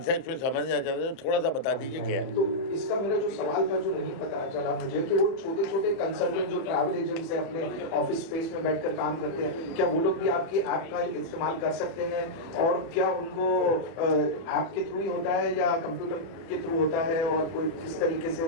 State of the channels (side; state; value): right; late; 30 ms